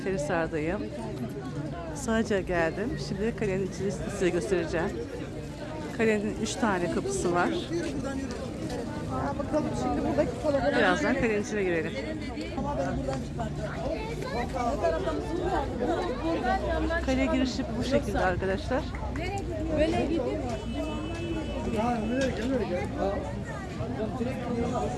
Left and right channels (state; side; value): identical; both; correlation 1.00